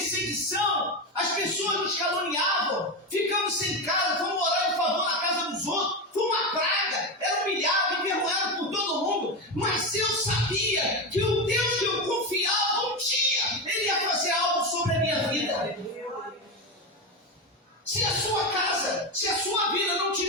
As pessoas nos caluniavam. Ficamos sem casa. Fomos morar em favor na casa dos outros. Foi uma praga. Era humilhado, envergonhado por todo mundo. Mas eu sabia que o Deus que eu confiava, um dia Ele ia fazer algo sobre a minha vida. Se a sua casa, se a sua vida não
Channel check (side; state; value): both; normal; correlation 0.15